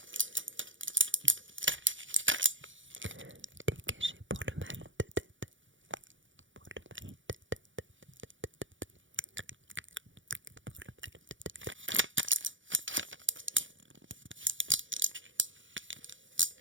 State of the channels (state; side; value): late; left; 0.56 ms